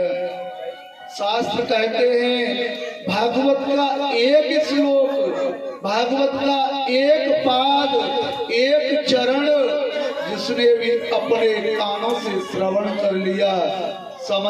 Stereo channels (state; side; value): identical; both; correlation 1.00